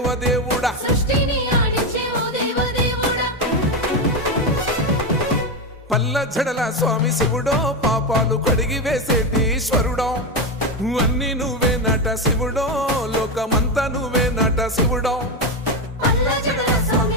పల్ల జడల స్వామి శివుడో పాపాలు కడిగి వేసేటి ఈశ్వరుడో అన్ని నువ్వే నట శివుడో లోకమంతా నువ్వే నట శివుడో పల్ల జడల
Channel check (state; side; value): normal; both; correlation 0.12